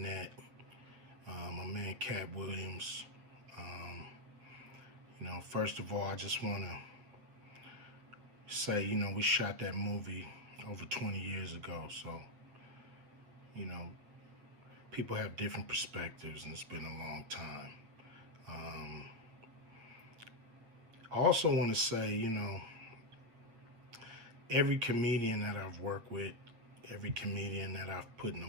My man Katt Williams. You know, first of all, I just want to say, you know, we shot that movie over 20 years ago. So, you know, people have different perspectives, and it's been a long time. I also want to say, you know, every comedian that I've worked with, every comedian that I've put in a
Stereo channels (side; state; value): left; late; 8.1 ms